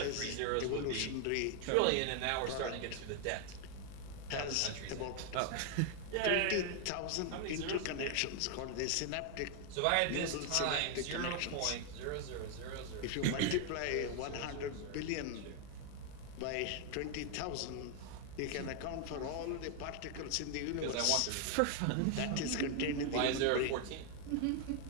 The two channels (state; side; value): different; both; correlation 0.00